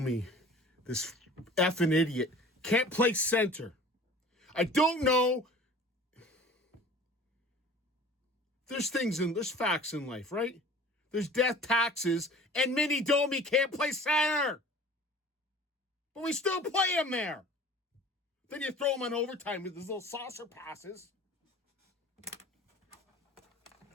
this effing idiot, can't play center. I don't know. There's facts in life, right? There's death, taxes, and Mini Domi can't play center. But we still play him there. Then you throw him on overtime with his little saucer passes.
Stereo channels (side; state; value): both; normal; correlation 0.43